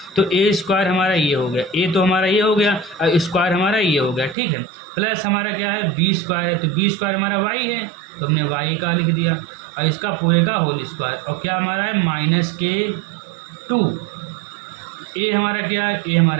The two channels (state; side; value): drops out; left; at 4.4 s